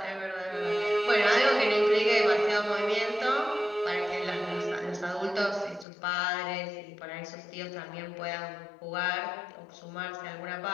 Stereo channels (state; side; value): drops out; right; at 5.9 s